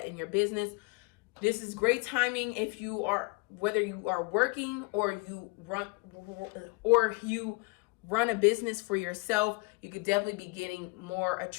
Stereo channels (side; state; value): right; quieter; 28.0 dB